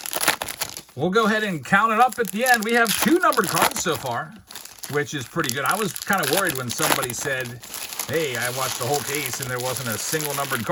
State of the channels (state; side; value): identical; both; correlation 1.00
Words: We'll go ahead and count it up at the end. We have 2 numbered cards so far, which is pretty good. I was kind of worried when somebody said, hey, I watched the whole case and there wasn't a single numbered